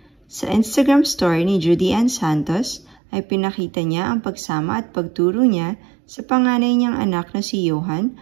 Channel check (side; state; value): left; drops out; at 3.0 s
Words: Sa Instagram story ni Judy Ann Santos ay pinakita niya ang pagsama at pagturo niya sa panganay niyang anak na si Johan